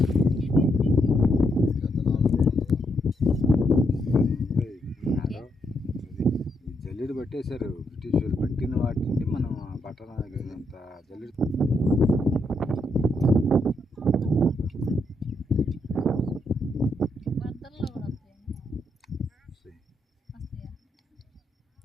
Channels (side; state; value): both; normal; correlation 0.77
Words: పెట్టేశారు బ్రిటిష్ వాళ్ళు. పెట్టిన వాటిని మనం పట్టణ అంత జల్లి వరదల్లో కూడా వస్తాయి. వస్తాయా?